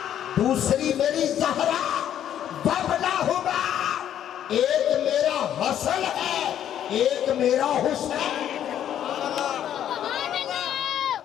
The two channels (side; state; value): right; quieter; 10.4 dB